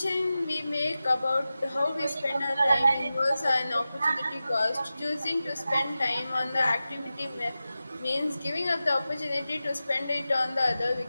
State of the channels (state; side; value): inverted; both; correlation -0.94